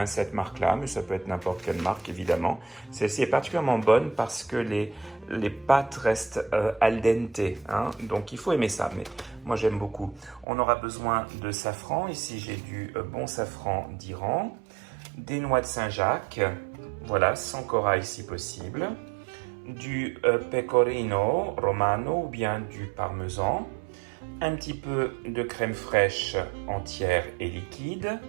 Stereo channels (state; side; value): drops out; left; at 10.5 s